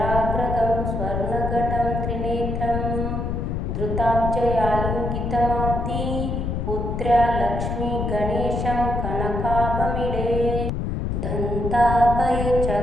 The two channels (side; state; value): left; noise; rumble, 2 dB below the sound